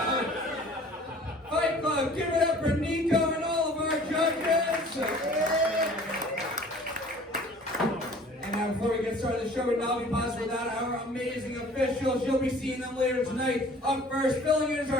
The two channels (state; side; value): normal; both; correlation 0.49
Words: Fight Club, give it up for Niko and all of our judges. And now before we get started, the show would not be possible without our amazing officials. You'll be seeing them later tonight. Up first, filling in is